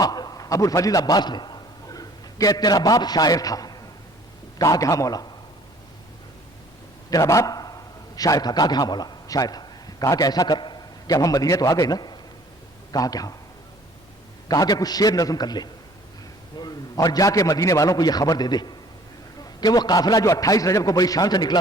ابو الفضل عباس نے کہ تیرا باپ شاعر تھا۔ کہا کہ ہاں مولا، تیرا باپ شاعر تھا۔ کہا کہ ہاں مولا شاعر تھا۔ کہا کہ ایسا کر کہ اب ہم مدینے تو آ گئے نا؟ کہا کہ ہاں۔ کہا کہ کچھ شعر نظم کر لے اور جا کے مدینے والوں کو یہ خبر دے دے کہ وہ قافلہ جو 28 رجب کو بڑی شان سے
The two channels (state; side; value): normal; both; correlation 0.54